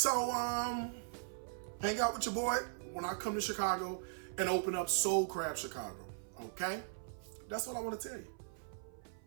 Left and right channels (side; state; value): left; silent; 52 dB below the other